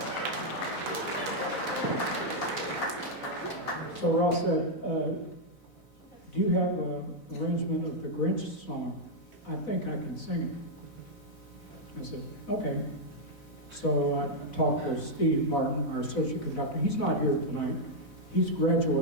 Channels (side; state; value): right; late; 4.0 ms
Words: so Ross said, do you have an arrangement of the Grinch song? I think I can sing it. I said, okay. So I talked to Steve Martin, our associate conductor. He's not here tonight. He's